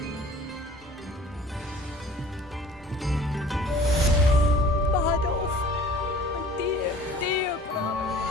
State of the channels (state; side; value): normal; both; correlation 0.48